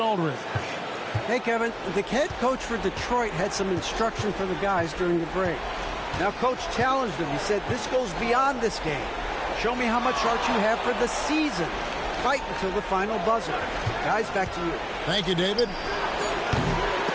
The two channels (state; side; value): identical; both; correlation 1.00